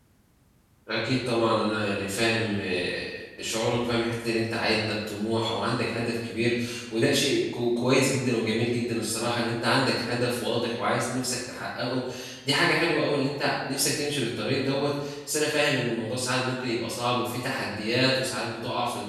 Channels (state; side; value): identical; both; correlation 1.00